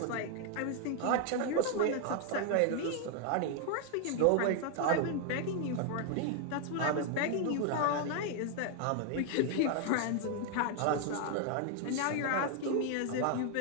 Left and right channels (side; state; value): both; different; correlation 0.00